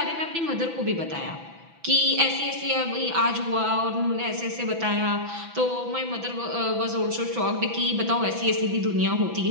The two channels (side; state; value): left; late; 6.0 ms